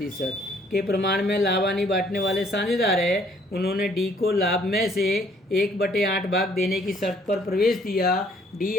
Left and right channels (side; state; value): both; normal; correlation 0.62